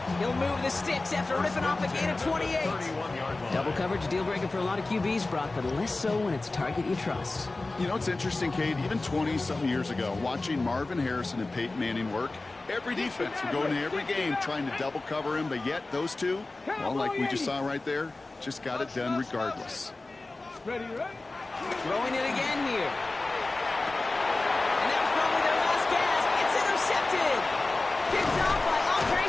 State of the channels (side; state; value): right; quieter; 3.2 dB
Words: He'll move the sticks after ripping off a gain of 28. Double coverage, deal breaker for a lot of QBs, Brock, but less so when it's a target you trust. You know, it's interesting, Kate, even 20-something years ago, watching Marvin Harrison and Peyton Manning work, every defense would go into every game trying to double cover him, but yet those two, well, like we just saw right there, just got it done regardless. Ready, ready. Throwing it again here. And that was probably their last gasp. It's intercepted. Picked off by Andre